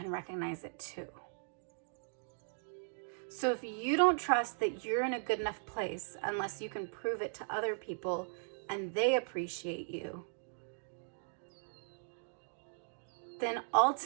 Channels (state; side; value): silent; left; digital silence